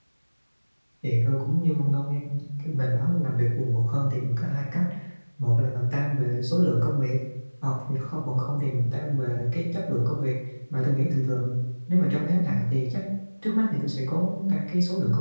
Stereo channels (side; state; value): both; inverted; correlation -1.00